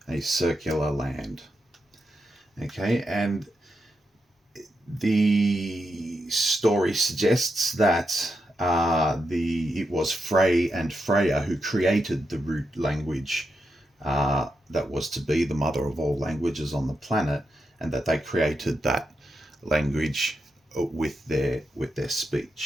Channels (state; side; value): normal; both; correlation 0.85